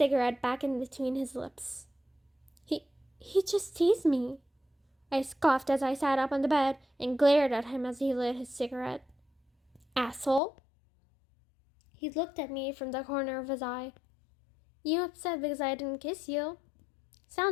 back in between his lips. He just teased me. I scoffed as I sat up on the bed and glared at him as he lit his cigarette. Asshole. He looked at me from the corner of his eye. You upset because I didn't kiss you?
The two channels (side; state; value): right; drops out; at 10.4 s